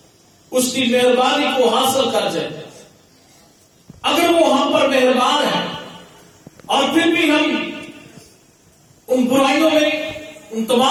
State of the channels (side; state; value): both; identical; correlation 1.00